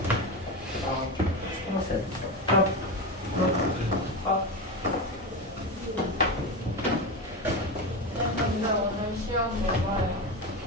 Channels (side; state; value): both; normal; correlation 0.19